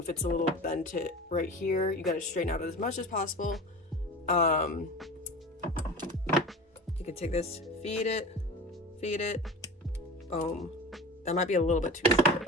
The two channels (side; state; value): both; normal; correlation 0.33